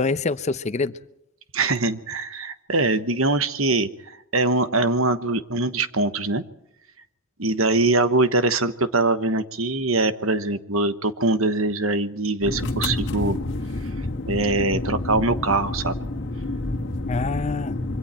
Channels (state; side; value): normal; both; correlation 0.06